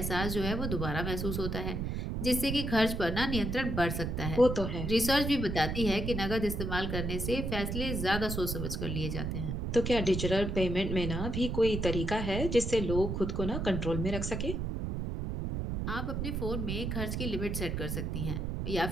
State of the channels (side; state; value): right; noise; rumble, 2 dB below the sound